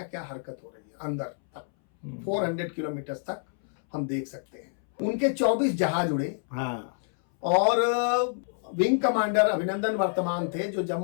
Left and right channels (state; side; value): silent; right; 60 dB below the other